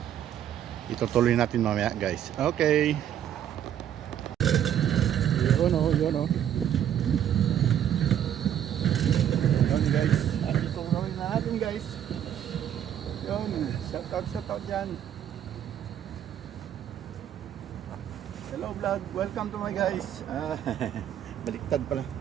itutuloy natin mamaya guys. Okay. Yun guys. At itutuloy na natin guys. Yun. Shout out dyan. Hello vlog. Welcome to my guys. Baliktad pala.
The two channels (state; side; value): quieter; left; 10.2 dB